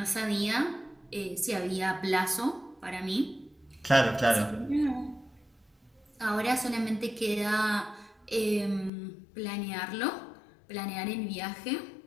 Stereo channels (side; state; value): right; drops out; at 8.9 s